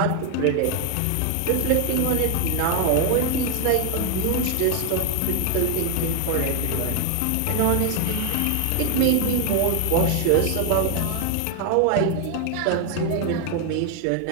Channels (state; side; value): different; both; correlation 0.00